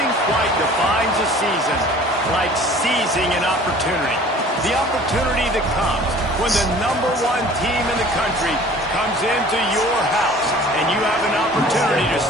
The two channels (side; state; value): both; normal; correlation 0.48